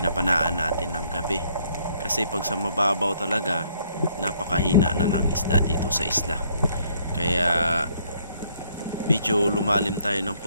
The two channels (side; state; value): both; inverted; correlation -0.66